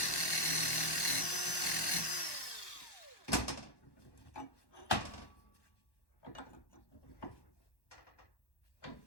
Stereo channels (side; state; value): right; late; 1.1 ms